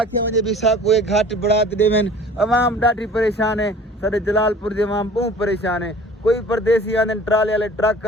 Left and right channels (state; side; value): normal; both; correlation 0.46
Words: वजे भी साको एक घाट बढ़ात देवन अवाम ढाठी परेशान है सारे जलालपुर के अवाम बहुत परेशान है कोई परदेसी आने ट्राले वाले ट्रक